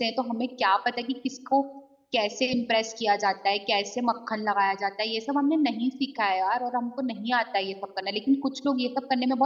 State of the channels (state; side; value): identical; both; correlation 1.00